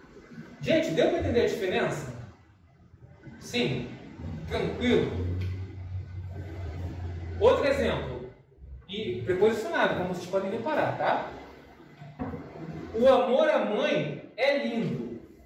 Gente, deu para entender a diferença? Sim? Tranquilo? Outro exemplo. E preposicionado, como vocês podem reparar, tá? O amor à mãe é lindo.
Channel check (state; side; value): identical; both; correlation 1.00